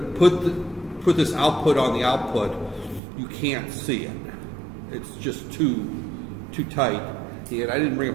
put this output on the output, you can't see it. It's just too tight. And I didn't bring a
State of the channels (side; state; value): left; drops out; at 3.0 s